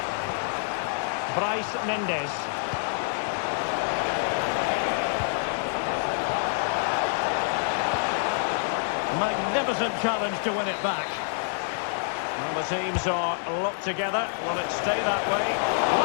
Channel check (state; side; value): silent; right; digital silence